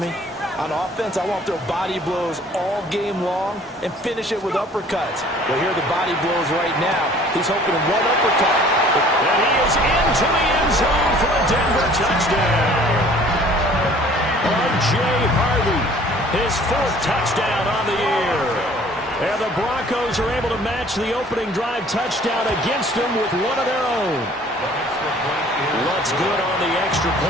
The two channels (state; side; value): normal; both; correlation 0.53